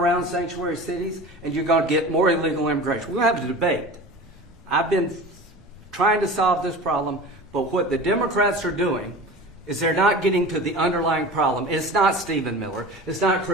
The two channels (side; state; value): both; normal; correlation 0.35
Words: sanctuary cities, and you're going to get more illegal immigration. We're going to have a debate. I've been trying to solve this problem, but what the Democrats are doing is they're not getting to the underlying problem. It's not Stephen Miller. It's not